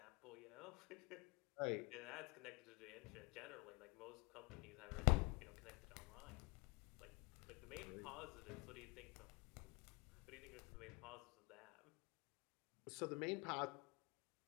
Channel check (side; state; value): right; quieter; 28.2 dB